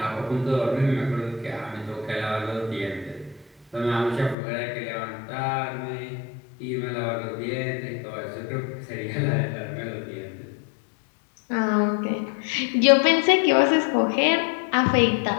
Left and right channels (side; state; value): right; drops out; at 4.4 s